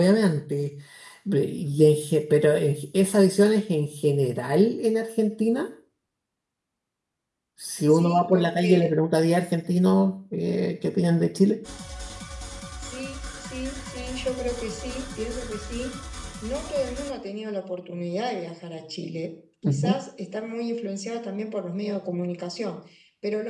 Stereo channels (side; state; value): both; identical; correlation 1.00